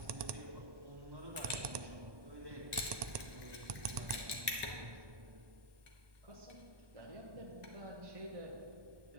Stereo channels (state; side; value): late; left; 1.2 ms